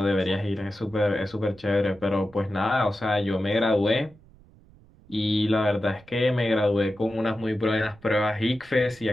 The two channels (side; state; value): right; noise; rumble, 26 dB below the sound